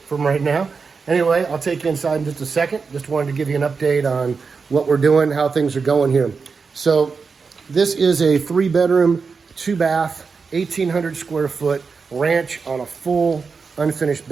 right now. Anyway, I'll take you inside in just a second. Just wanted to give you an update on what we're doing, how things are going here. So this is a 3-bedroom, 2-bath, 1,800 square foot ranch on a full unfinished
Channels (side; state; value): left; quieter; 5.1 dB